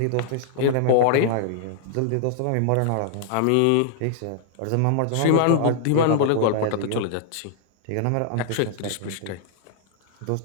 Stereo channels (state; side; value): different; both; correlation -0.01